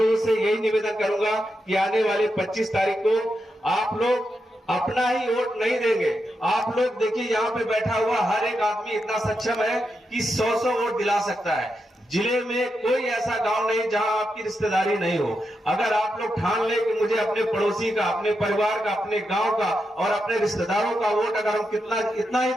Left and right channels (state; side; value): normal; both; correlation 0.86